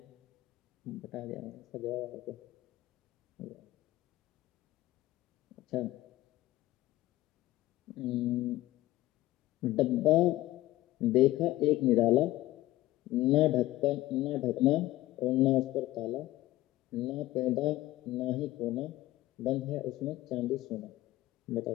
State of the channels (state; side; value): quieter; right; 16.7 dB